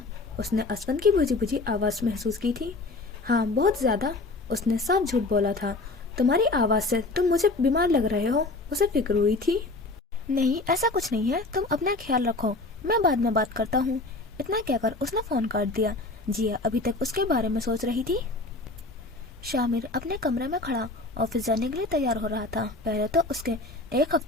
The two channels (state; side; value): quieter; right; 3.1 dB